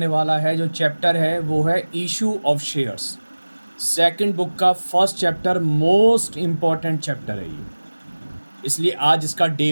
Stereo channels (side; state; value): both; inverted; correlation -1.00